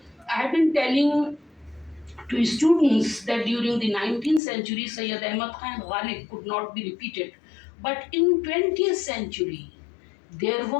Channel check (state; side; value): drops out; right; at 4.4 s